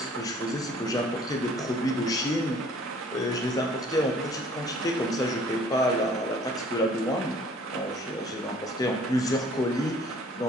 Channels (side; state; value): both; normal; correlation 0.55